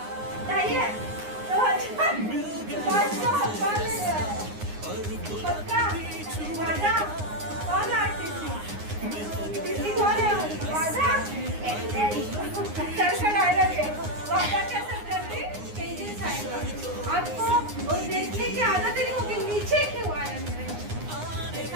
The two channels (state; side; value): late; left; 9.7 ms